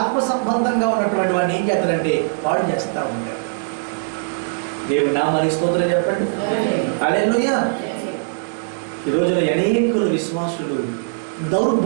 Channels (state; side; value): silent; left; 65 dB below the other